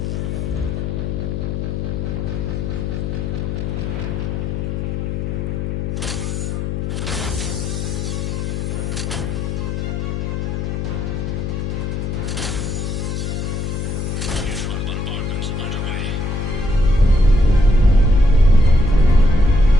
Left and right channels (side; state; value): left; noise; hum, 2 dB below the sound